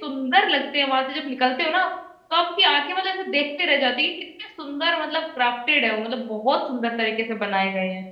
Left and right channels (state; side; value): identical; both; correlation 1.00